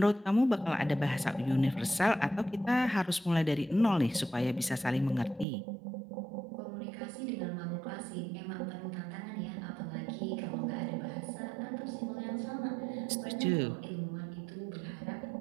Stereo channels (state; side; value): drops out; left; at 5.5 s